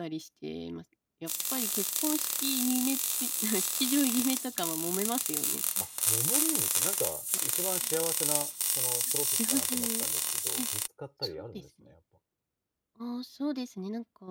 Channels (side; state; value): both; identical; correlation 1.00